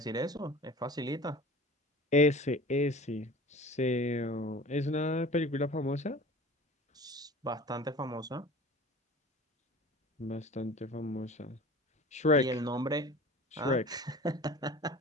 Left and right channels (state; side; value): normal; both; correlation 0.41